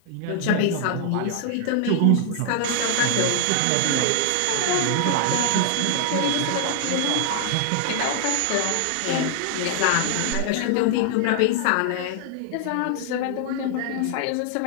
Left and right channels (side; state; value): both; different; correlation 0.00